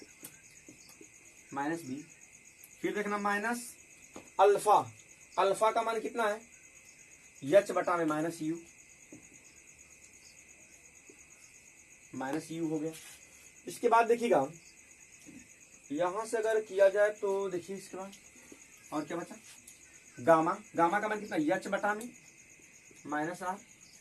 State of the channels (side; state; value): both; identical; correlation 1.00